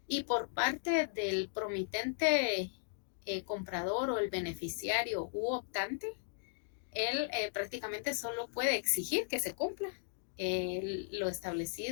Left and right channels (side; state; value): right; silent; digital silence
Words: Y por parte del promitente comprador o el beneficiario u optante, él prácticamente solo puede exigir que se cumpla lo